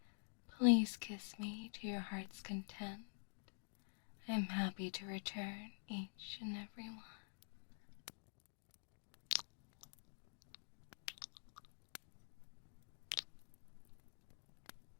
Please kiss me to your heart's content. I'm happy to return each and every one.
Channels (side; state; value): right; silent; digital silence